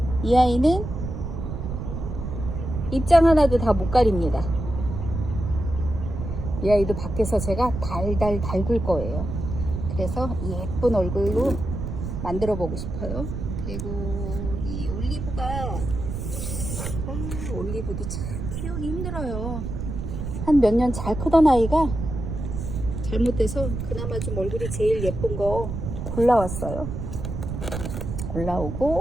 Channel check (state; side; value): noise; right; rumble, 5 dB below the sound